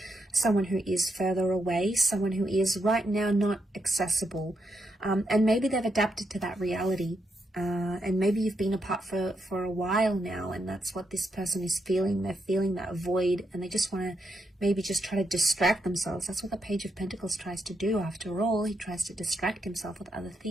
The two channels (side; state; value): both; normal; correlation 0.80